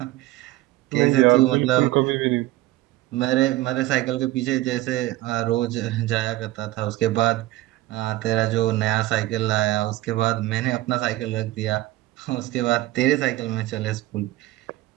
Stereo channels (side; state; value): left; quieter; 17.1 dB